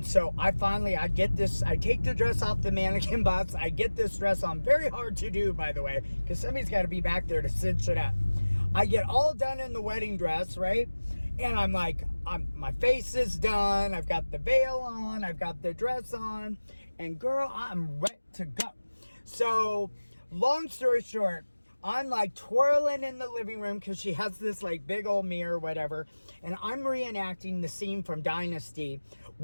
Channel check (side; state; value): both; inverted; correlation -1.00